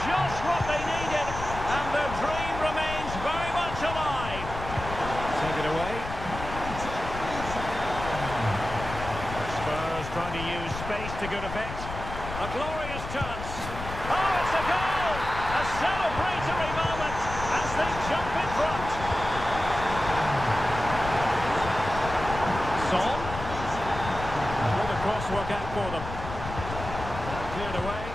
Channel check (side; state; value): left; noise; rumble, 8 dB below the sound